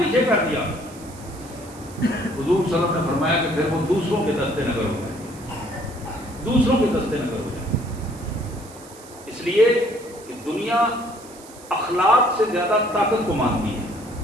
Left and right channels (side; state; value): right; noise; hiss, 20 dB below the sound